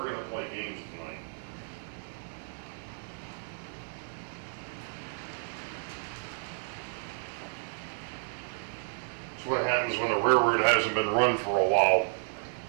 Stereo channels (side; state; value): left; silent; digital silence